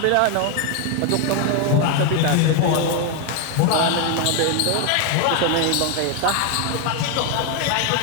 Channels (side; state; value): both; different; correlation 0.01